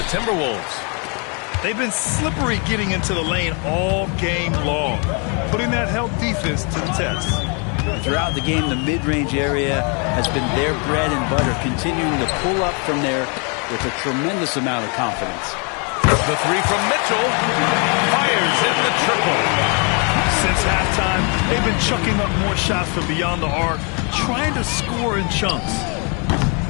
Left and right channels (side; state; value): right; quieter; 35.6 dB